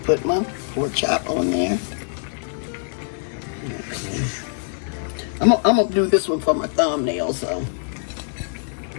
put my pork chop on there. Okay. I'm gonna do this one for my thumbnail, so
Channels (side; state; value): right; silent; 63 dB below the other